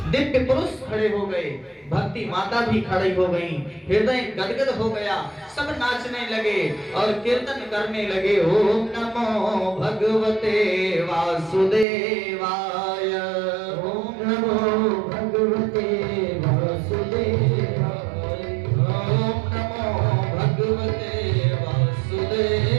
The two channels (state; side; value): drops out; left; at 11.9 s